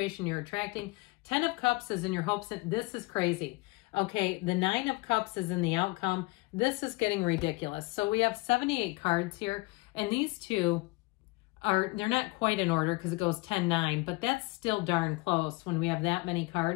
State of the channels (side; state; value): right; quieter; 23.9 dB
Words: you're attracting. 10 of Cups is in your hopes. This is crazy. Okay, the Nine of Cups is in the outcome. This is getting ridiculous. So we have 78 cards here, and these two they're not quite in order because it goes 10-9, but that's still darn close when we have that many